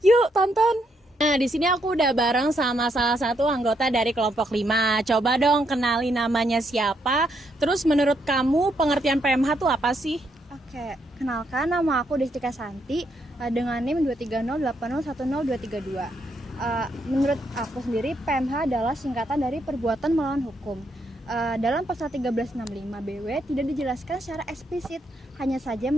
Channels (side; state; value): both; normal; correlation 0.76